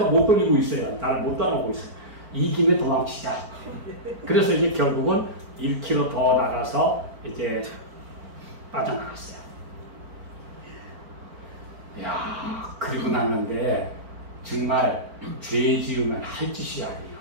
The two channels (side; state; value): left; late; 4.4 ms